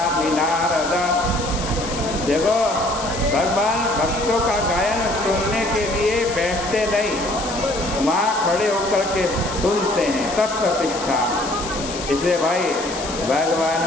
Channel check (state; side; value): noise; left; hiss, 10 dB below the sound